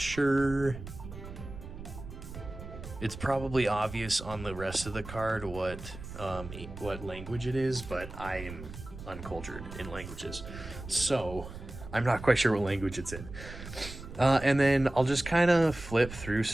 It's probably obvious on the rest of the card what language it is, but I am uncultured in languages, so I'm not quite sure what language it's in. And then I'll just kind of flip through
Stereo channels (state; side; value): noise; right; rumble, 12 dB below the sound